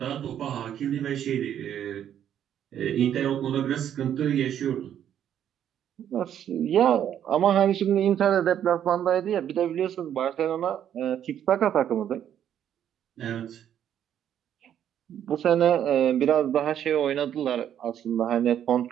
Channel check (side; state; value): left; quieter; 10.0 dB